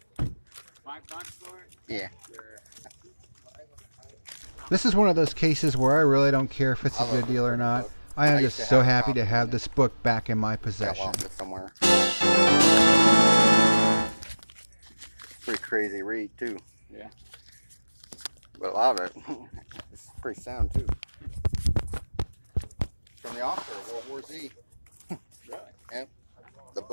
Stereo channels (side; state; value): both; inverted; correlation -1.00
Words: $5 for it? Yeah. Sure. This is one of those cases where I really don't care if it's a good deal or not. I am just so happy to have this book back in my possession. Somewhere. Pretty crazy read too. Yeah. But a lot of it, it's pretty sound too. From the author of World War Z. Really? Yep. The